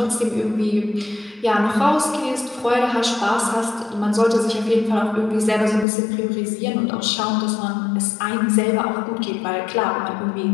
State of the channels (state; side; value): drops out; right; at 5.9 s